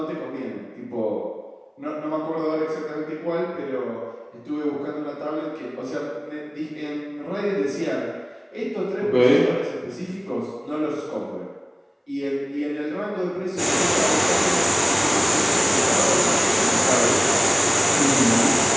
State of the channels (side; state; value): both; identical; correlation 1.00